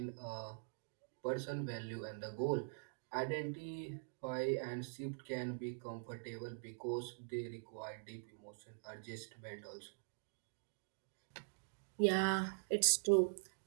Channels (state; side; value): silent; left; digital silence